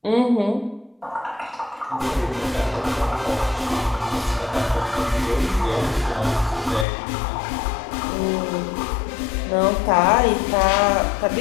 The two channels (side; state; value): right; drops out; at 6.9 s